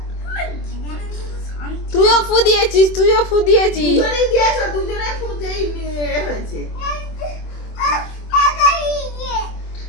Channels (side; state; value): right; late; 24 ms